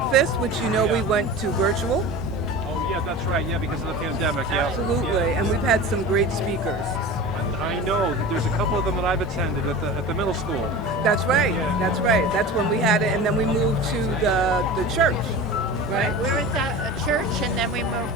which we went to virtual. Oh, yeah, that's right. Yeah, because of the pandemic. Yeah. Absolutely. Yeah. And we've had some great speakers. I know. There's a couple of them that I've attended at the middle school. That's right. Yeah. That's right. That's when we had it, and then we moved to the church. Right. We were at a church, and then we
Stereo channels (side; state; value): both; normal; correlation 0.33